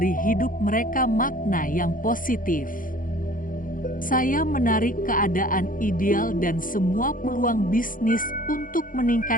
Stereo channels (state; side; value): late; right; 0.40 ms